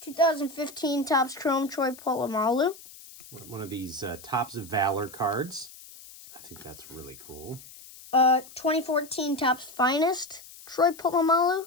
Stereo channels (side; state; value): left; noise; hiss, 19 dB below the sound